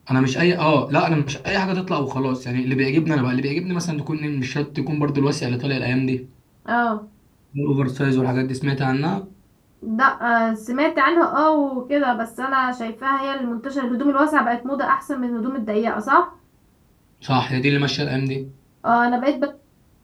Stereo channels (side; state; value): both; identical; correlation 1.00